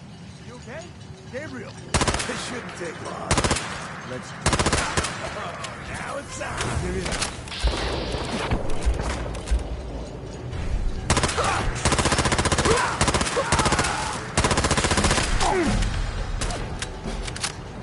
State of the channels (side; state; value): both; identical; correlation 1.00